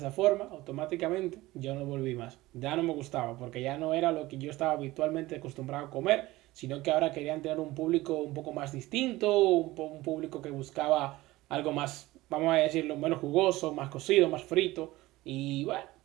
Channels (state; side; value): quieter; left; 18.6 dB